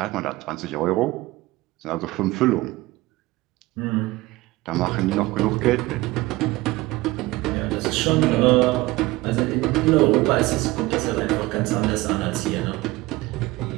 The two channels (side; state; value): left; quieter; 20.0 dB